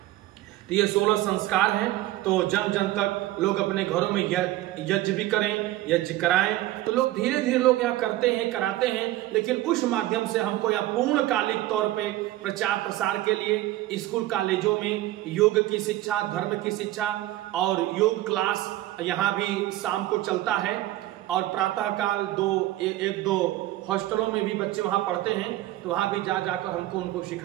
तो ये 16 संस्कार हैं। तो जन जन तक लोग अपने घरों में यज्ञ भी करें, यज्ञ कराएं, तो लोग धीरे धीरे लोग यहाँ करते हैं, कराते हैं, लेकिन उस माध्यम से हमको यहाँ पूर्णकालिक तौर पे प्रचार प्रसार के लिए स्कूल कॉलेजों में योग की शिक्षा, धर्म की शिक्षा और योग क्लास यहाँ भी शाम को चलता है, और प्रातः काल 1-2 हॉस्टलों में भी बच्चे वहाँ पढ़ते हैं, तो वहाँ भी जाकर हमको उनको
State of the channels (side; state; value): left; quieter; 15.7 dB